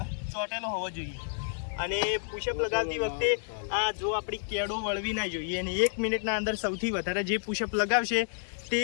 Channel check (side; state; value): right; silent; digital silence